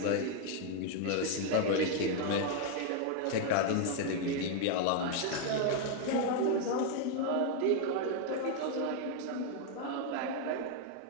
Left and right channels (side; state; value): both; different; correlation 0.00